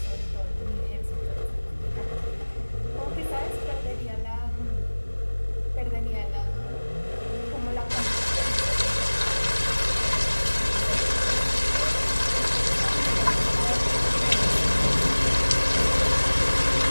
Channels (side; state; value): both; inverted; correlation -1.00